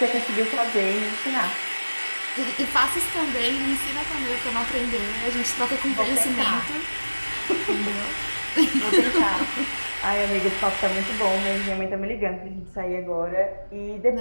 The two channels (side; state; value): both; inverted; correlation -1.00